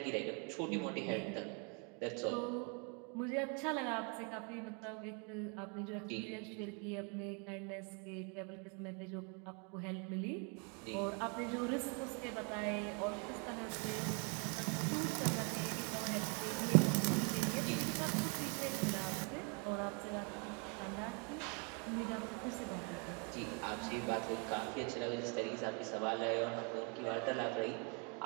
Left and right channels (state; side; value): quieter; left; 35.8 dB